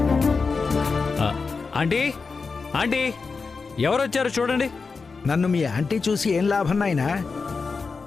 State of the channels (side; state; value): right; quieter; 4.7 dB